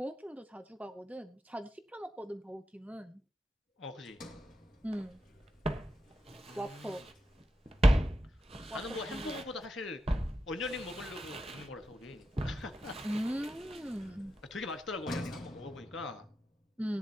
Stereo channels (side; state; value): both; normal; correlation 0.88